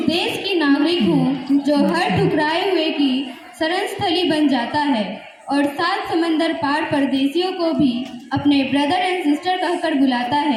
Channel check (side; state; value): both; identical; correlation 1.00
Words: देश की नागरिक हूँ जो हर ठुकराए हुए की शरण स्थली बन जाता है और 7 समंदर पार परदेशियों को भी अपने ब्रदर एंड सिस्टर कहकर बुलाता